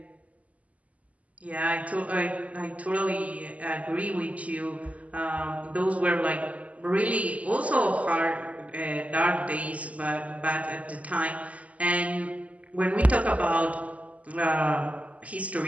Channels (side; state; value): left; late; 0.070 ms